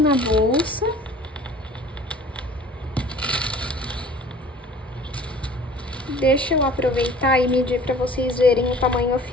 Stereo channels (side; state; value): both; normal; correlation 0.48